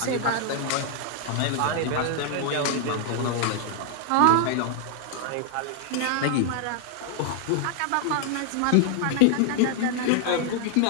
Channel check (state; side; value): different; both; correlation 0.00